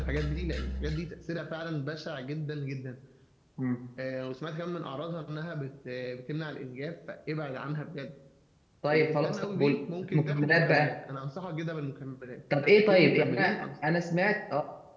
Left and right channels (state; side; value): identical; both; correlation 1.00